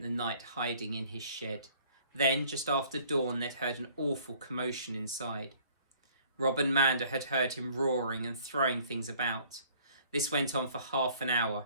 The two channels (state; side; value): inverted; both; correlation -0.56